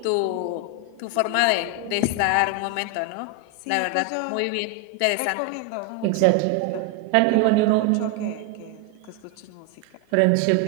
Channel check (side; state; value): both; different; correlation 0.01